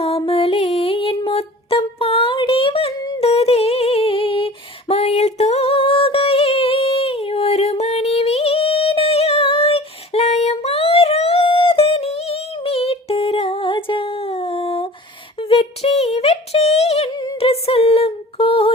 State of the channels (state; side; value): normal; both; correlation 0.42